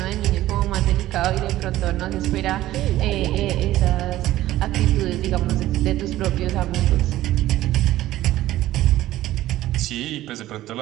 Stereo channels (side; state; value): left; quieter; 15.0 dB